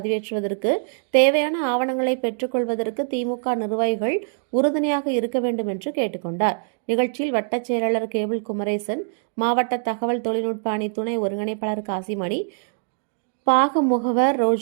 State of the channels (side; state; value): left; silent; digital silence